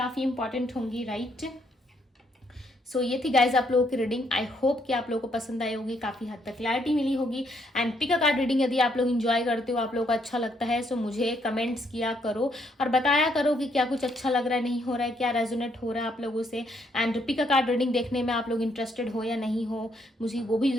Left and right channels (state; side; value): normal; both; correlation 0.72